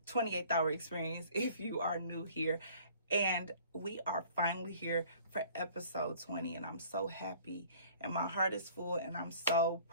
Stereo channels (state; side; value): inverted; both; correlation -0.52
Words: hour experience if you are new here. And we are finally here for episode 20. And I'm so happy. And my heart is full. And I'm so